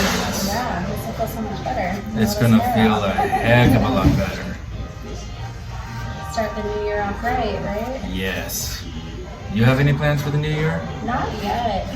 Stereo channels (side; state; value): both; identical; correlation 1.00